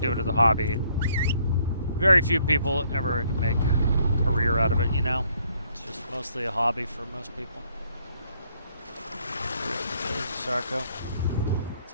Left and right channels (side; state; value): both; inverted; correlation -0.67